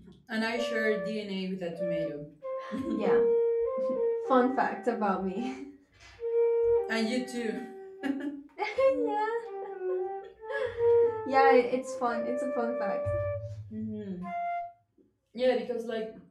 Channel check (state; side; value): identical; both; correlation 1.00